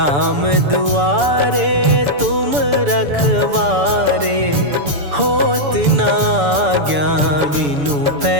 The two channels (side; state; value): left; late; 7.0 ms